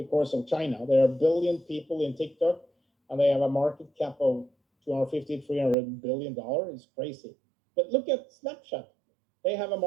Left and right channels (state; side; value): drops out; left; at 5.8 s